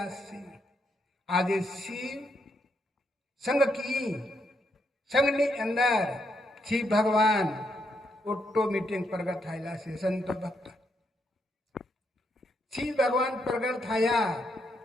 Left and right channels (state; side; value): normal; both; correlation 0.78